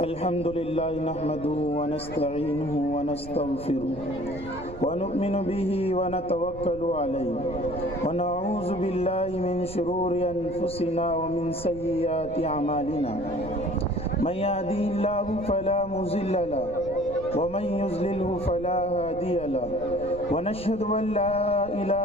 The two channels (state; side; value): noise; right; rumble, 14 dB below the sound